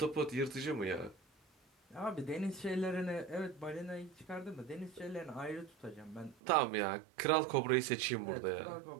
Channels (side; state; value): left; drops out; at 6.4 s